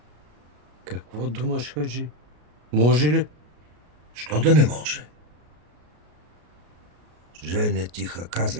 Какво думаш, Хаджи? Може ли? Що да не може? Женя тиха,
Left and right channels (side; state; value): left; late; 33 ms